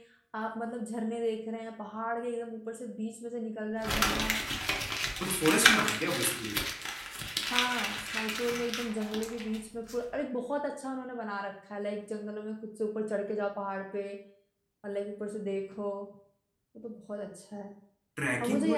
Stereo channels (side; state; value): both; identical; correlation 1.00